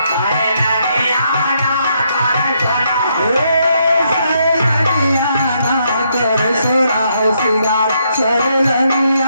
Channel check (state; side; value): inverted; both; correlation -0.75